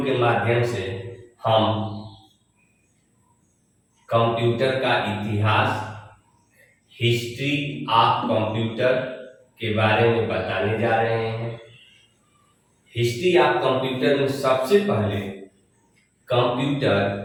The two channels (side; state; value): both; identical; correlation 1.00